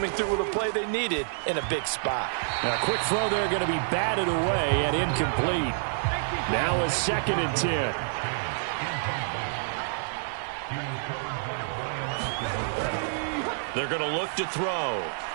through with a play they needed in a big spot. A quick throw there going to be batted away and incomplete. Now a 2nd and 10. They're going to look to throw.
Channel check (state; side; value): silent; left; 59 dB below the other